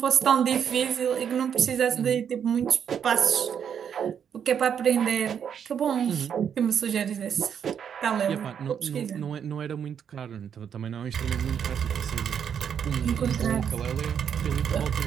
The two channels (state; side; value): quieter; left; 8.1 dB